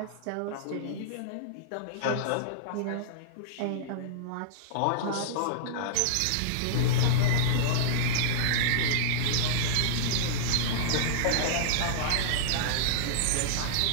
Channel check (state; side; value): different; both; correlation -0.02